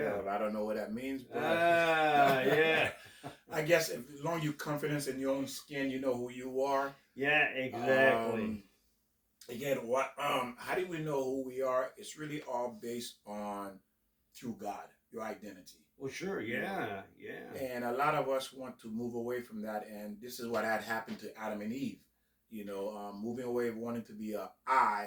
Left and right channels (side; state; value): both; identical; correlation 1.00